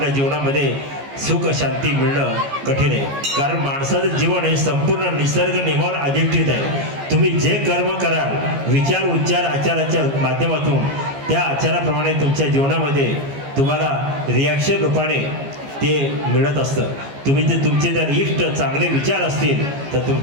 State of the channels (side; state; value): left; late; 15 ms